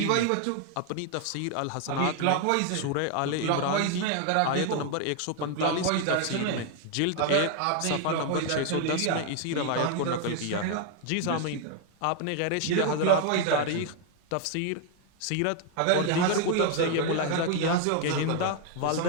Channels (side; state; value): both; different; correlation 0.00